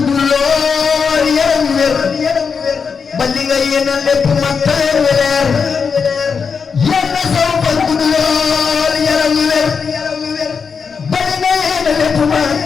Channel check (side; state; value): right; quieter; 5.8 dB